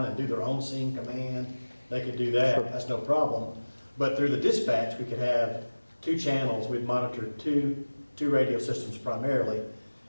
and do their own scene command, they could do that. Sure. That's no problem. But through the dispatch, we could have 2 channels. We'd monitor two radio systems primarily,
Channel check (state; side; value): inverted; both; correlation -1.00